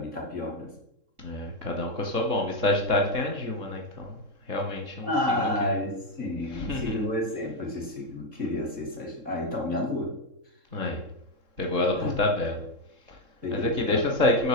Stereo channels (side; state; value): left; late; 3.7 ms